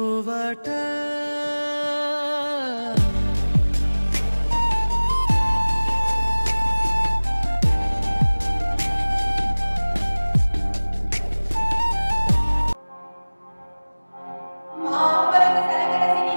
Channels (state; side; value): inverted; both; correlation -1.00